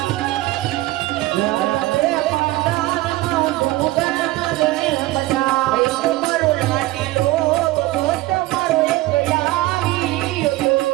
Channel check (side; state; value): left; quieter; 18.2 dB